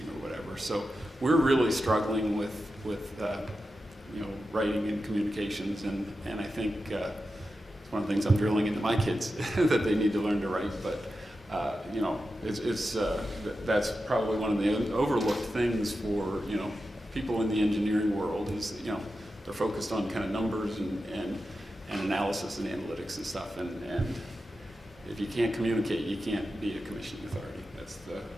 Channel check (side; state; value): both; normal; correlation 0.91